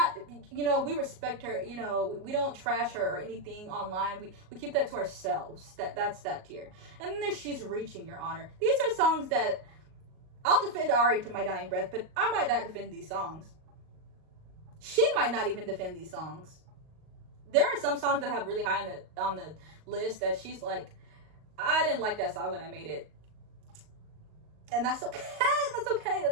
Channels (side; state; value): left; late; 38 ms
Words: we respect her. We don't trash her or anything online. We keep that to ourselves. That's that tier. And then there's She's Reaching, Your Honor. These are songs that I'll defend Ari to my dying breath, but I might not defend these songs. She might not even defend these songs. There are some songs that I have really high on the list that she's like, I didn't like that song when I made it. And that's okay. That's